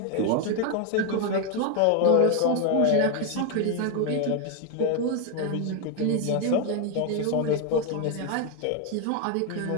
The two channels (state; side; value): different; both; correlation 0.01